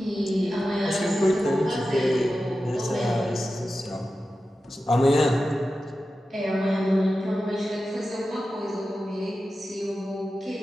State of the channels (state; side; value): normal; both; correlation 0.93